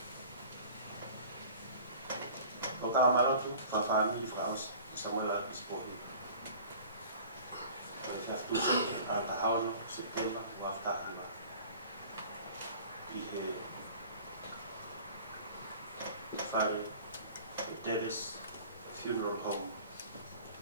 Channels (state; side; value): inverted; both; correlation -0.44